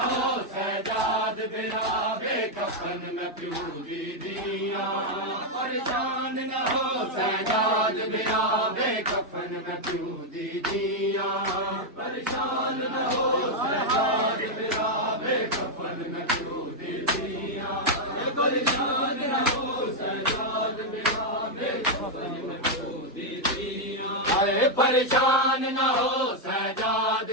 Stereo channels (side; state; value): both; normal; correlation 0.00